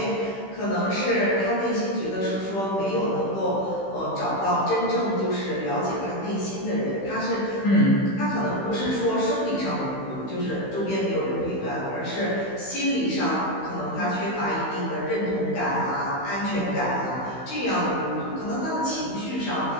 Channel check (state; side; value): late; right; 16 ms